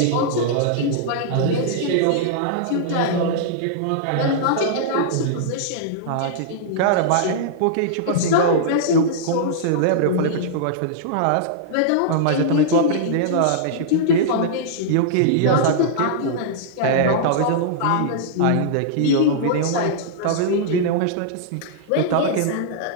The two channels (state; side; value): different; both; correlation -0.02